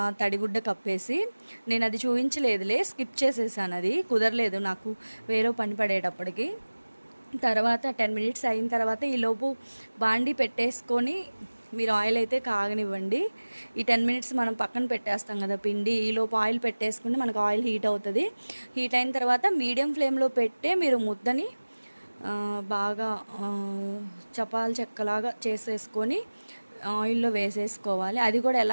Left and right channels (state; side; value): inverted; both; correlation -1.00